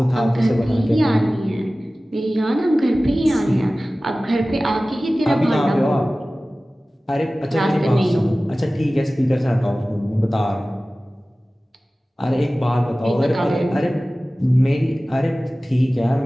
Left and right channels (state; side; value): normal; both; correlation 0.97